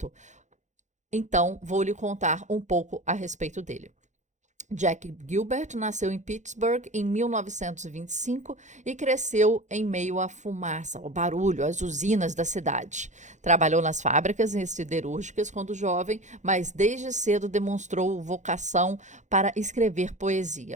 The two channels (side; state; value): left; late; 0.35 ms